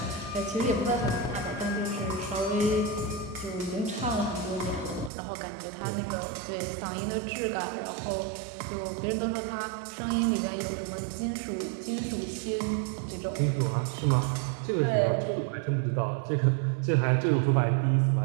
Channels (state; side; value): drops out; left; at 5.1 s